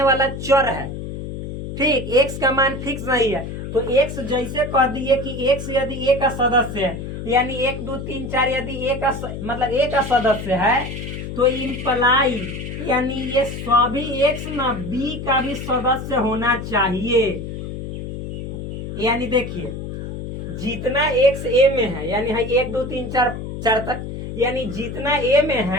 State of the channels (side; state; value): left; noise; hum, 7 dB below the sound